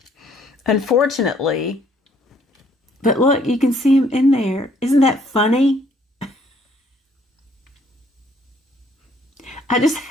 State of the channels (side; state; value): both; normal; correlation 0.64